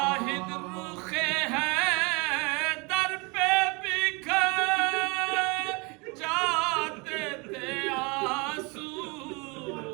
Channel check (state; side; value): quieter; left; 28.7 dB